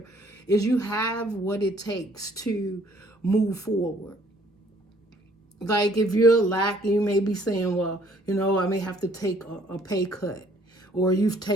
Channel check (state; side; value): normal; both; correlation 0.61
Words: is you have what it takes to move forward. Like if you're lacking, you may be saying, well, I may have to take a pay cut, or you've